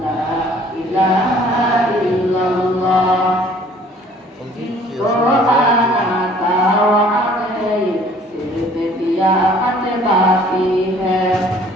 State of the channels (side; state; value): both; normal; correlation 0.55